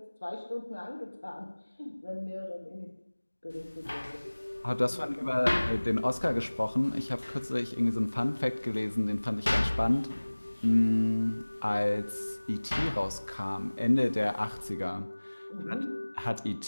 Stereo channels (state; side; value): inverted; both; correlation -1.00